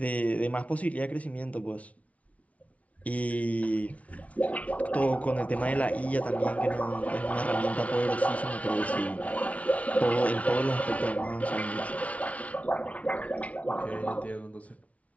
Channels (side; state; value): right; late; 0.066 ms